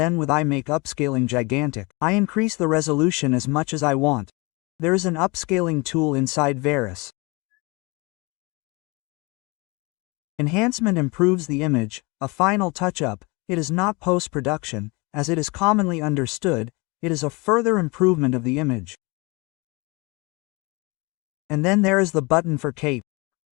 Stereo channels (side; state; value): right; quieter; 26.9 dB